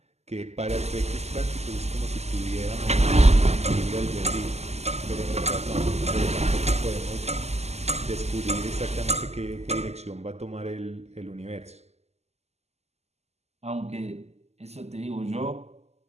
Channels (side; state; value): left; late; 0.31 ms